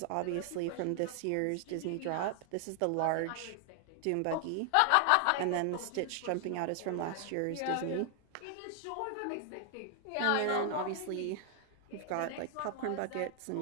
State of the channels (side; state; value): both; different; correlation 0.00